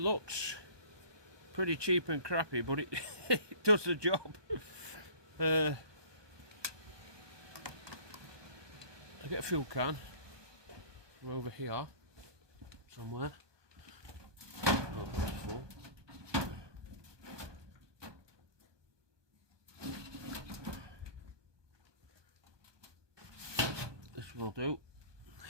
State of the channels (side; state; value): left; late; 1.2 ms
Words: looks pretty cheap and crappy, but it, it does the job. I get a fuel can from over here somewhere. Oh, that's full. This will do.